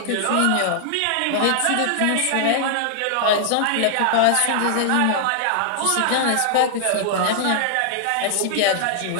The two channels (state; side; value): different; both; correlation -0.01